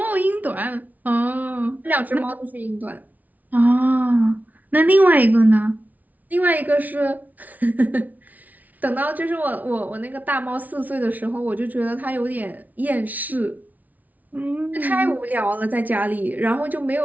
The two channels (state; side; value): late; left; 0.076 ms